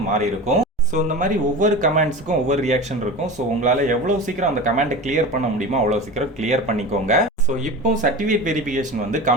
மாறி இருக்கும். ஸோ இந்த மாதிரி ஒவ்வொரு கமெண்ட்ஸுக்கும் ஒவ்வொரு ரியாக்ஷன் இருக்கும். ஸோ உங்களால் எவ்வளோ சீக்கிரம் அந்த கமெண்ட்டை கிளியர் பண்ண முடியுமோ அவ்வளோ சீக்கிரம் கிளியர் பண்ணிக்கோங்க. ஸோ இப்போ சர்டிஃபிகேட் வெரிஃபிகேஷன் வந்து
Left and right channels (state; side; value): normal; both; correlation 0.30